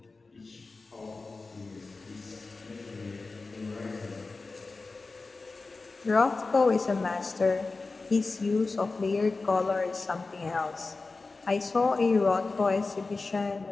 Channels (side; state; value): right; quieter; 3.7 dB